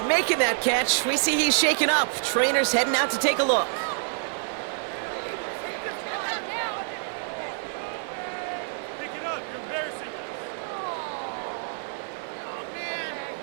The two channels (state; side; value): silent; left; 60 dB below the other